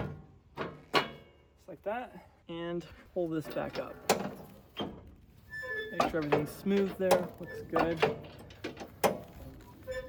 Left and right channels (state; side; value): identical; both; correlation 1.00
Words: like that. And pull this back up. Make sure everything's smooth there, looks good.